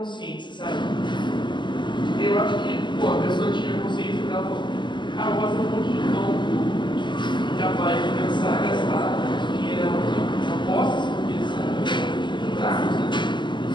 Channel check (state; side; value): late; right; 0.22 ms